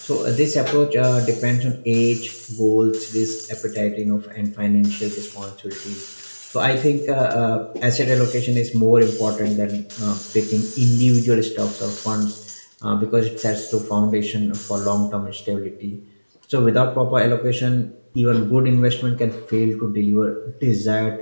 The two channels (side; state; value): both; inverted; correlation -1.00